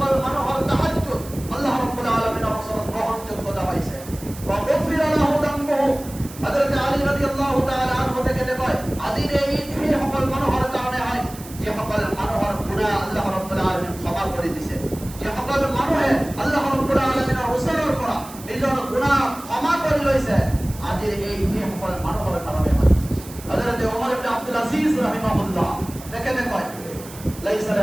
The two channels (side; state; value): right; noise; hiss, 17 dB below the sound